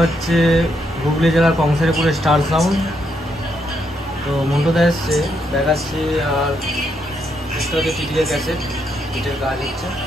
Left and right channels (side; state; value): both; normal; correlation 0.77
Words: হচ্ছে হুগলি জেলার কংসারীপুরের স্টার সাউন্ড। তো মন্টুদা এসছে দেখাচ্ছি, আর এটা হচ্ছে টিটিএর ক্যাসেট, বিটের কাজ হচ্ছে।